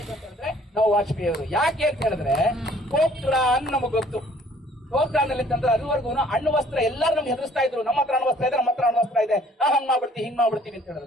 ನಾವು ವಾಜಪೇಯಿ ಅವರು. ಯಾಕೆ ಅಂತ ಹೇಳಿದ್ರೆ ಪೋಖ್ರಾನ್ ನಮಗ್ ಗೊತ್ತು. ಪೋಖ್ರಾನಲ್ಲಿ ಅಂತಂದ್ರೆ ಅದುವರೆಗೂ ಅಣ್ಣು ವಸ್ತ್ರ ಎಲ್ಲರೂ ನಮ್ಗೆ ಹೆದರ್ಸ್ತಾ ಇದ್ರು. ನಮ್ಮ ಹತ್ರ ಅಣ್ಣು ವಸ್ತ್ರ ಇದೆ, ನಮ್ಮ ಹತ್ರ ಅಣ್ಣು ವಸ್ತ್ರ ಇದೆ, ಹಂಗ್ ಮಾಡ್ಬಿಡ್ತೀವಿ ಹಿಂಗ್ ಮಾಡ್ಬಿಡ್ತೀವಿ ಅಂತ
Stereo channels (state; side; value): normal; both; correlation 0.57